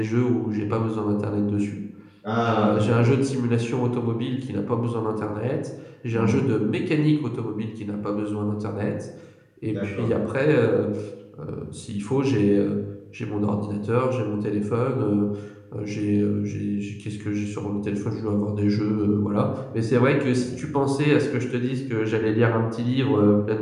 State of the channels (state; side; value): identical; both; correlation 1.00